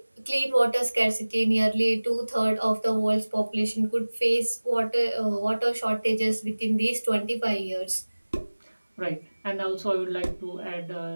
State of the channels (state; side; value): inverted; both; correlation -1.00